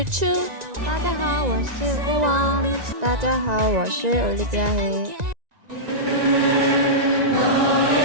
Chu。大家好，我是顾王。大家好，我是 Olivia黑。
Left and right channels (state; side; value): late; left; 1.9 ms